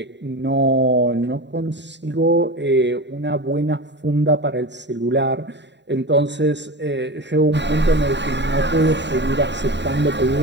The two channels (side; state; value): left; late; 0.52 ms